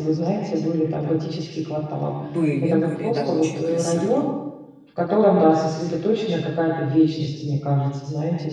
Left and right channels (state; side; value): identical; both; correlation 1.00